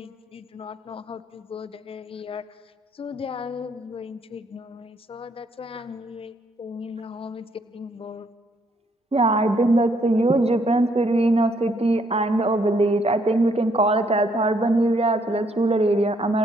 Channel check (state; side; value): normal; both; correlation 0.70